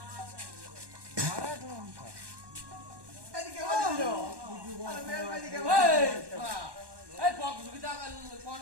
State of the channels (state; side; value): late; left; 1.1 ms